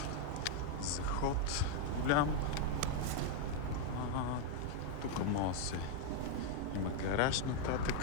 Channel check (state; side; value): different; both; correlation 0.00